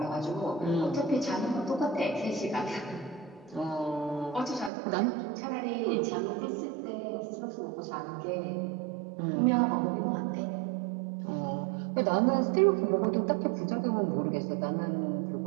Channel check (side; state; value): left; drops out; at 4.7 s